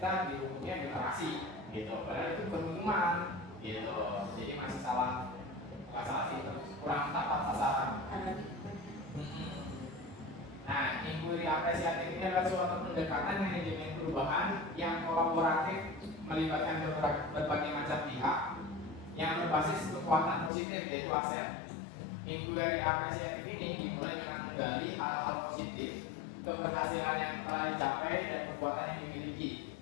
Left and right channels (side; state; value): right; drops out; at 20.5 s